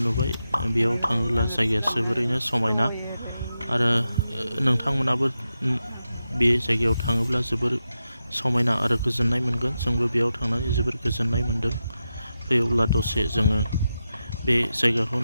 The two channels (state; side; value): inverted; both; correlation -0.89